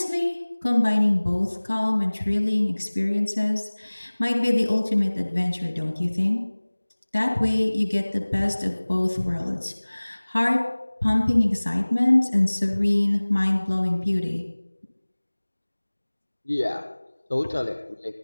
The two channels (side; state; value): both; inverted; correlation -1.00